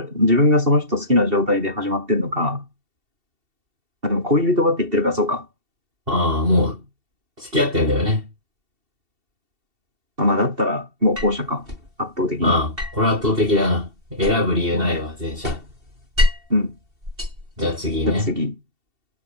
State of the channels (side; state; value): left; late; 2.7 ms